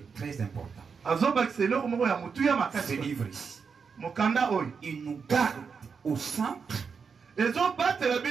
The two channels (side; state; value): left; quieter; 5.8 dB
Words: très important. Ce livre ici, il nous garde au centre,